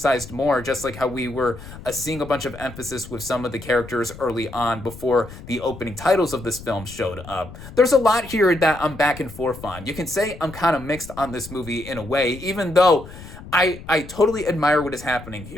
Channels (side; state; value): left; noise; rumble, 15 dB below the sound